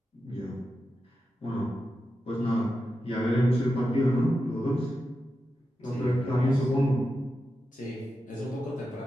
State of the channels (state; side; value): normal; both; correlation 0.89